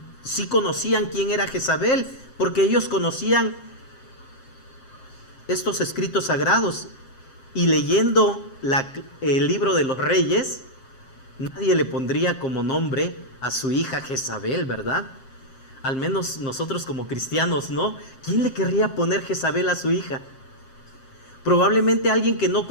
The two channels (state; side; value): late; right; 7.5 ms